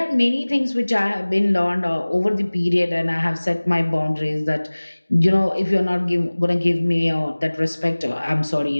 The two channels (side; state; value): both; inverted; correlation -1.00